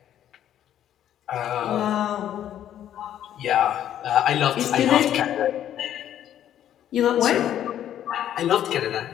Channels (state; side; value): quieter; right; 10.9 dB